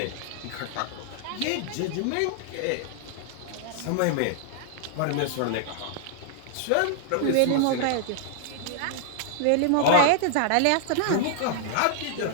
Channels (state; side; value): different; both; correlation -0.01